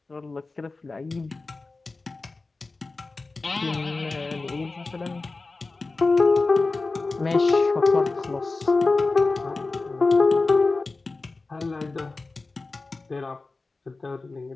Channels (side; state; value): right; quieter; 3.6 dB